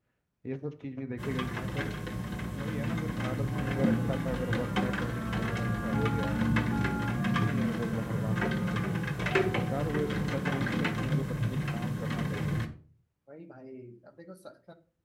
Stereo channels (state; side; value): identical; both; correlation 1.00